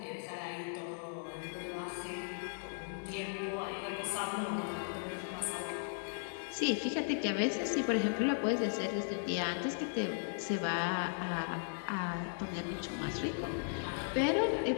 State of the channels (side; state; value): right; silent; 53 dB below the other